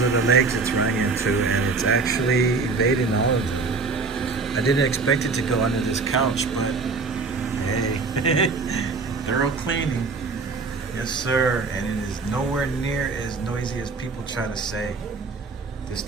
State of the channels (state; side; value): quieter; left; 4.2 dB